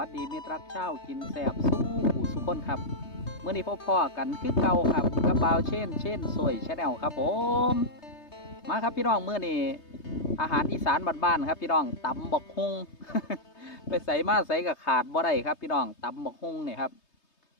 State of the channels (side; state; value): right; late; 3.2 ms